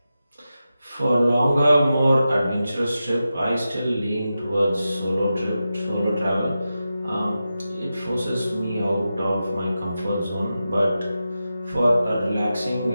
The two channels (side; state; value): both; inverted; correlation -0.91